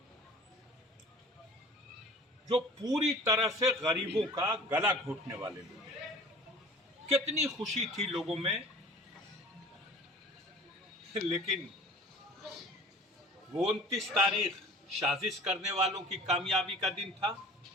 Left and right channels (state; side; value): normal; both; correlation 0.44